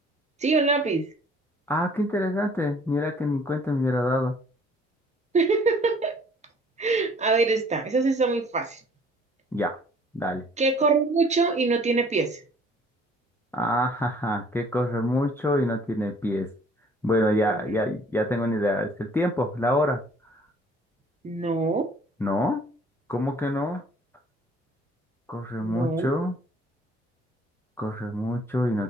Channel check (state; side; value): normal; both; correlation 0.56